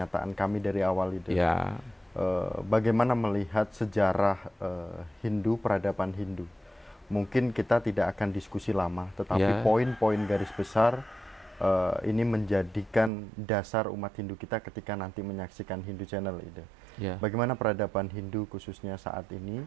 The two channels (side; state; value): left; drops out; at 13.1 s